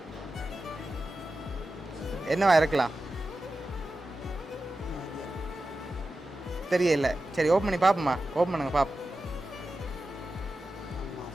என்னவா இருக்கலாம்? தெரியல. சரி, ஓப்பன் பண்ணி பார்ப்போம்மா. ஓப்பன் பண்ணுங்க பார்ப்போம்.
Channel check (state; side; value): normal; both; correlation 0.93